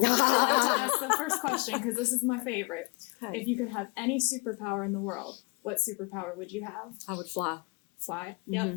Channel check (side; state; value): right; quieter; 30.2 dB